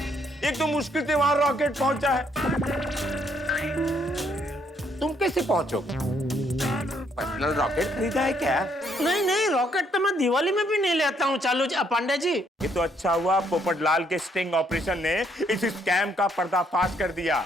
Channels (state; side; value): normal; both; correlation 0.70